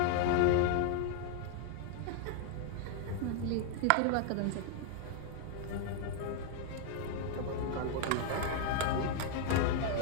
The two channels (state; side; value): different; both; correlation 0.00